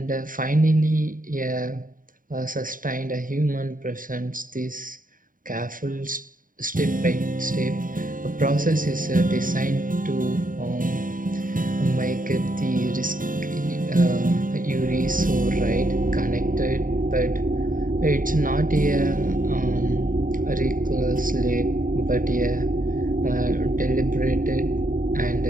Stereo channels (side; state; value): left; late; 0.40 ms